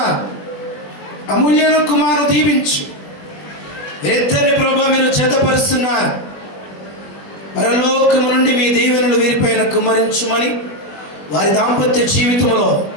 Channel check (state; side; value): late; right; 20 ms